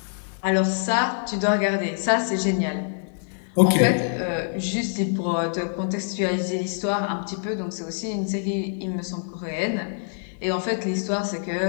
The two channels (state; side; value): silent; right; 62 dB below the other